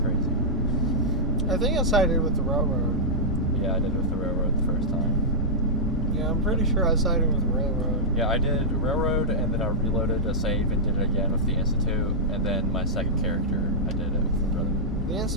crazy. I think I sided with the Railroad. Yeah, I did with the Railroad the first time. Yeah, I'm pretty sure I sided with the Railroad. Yeah, I did Railroad, and then I reloaded a save and did it again with the Institute, and then my second character, I did it with the Brotherhood. The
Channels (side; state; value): both; normal; correlation -0.10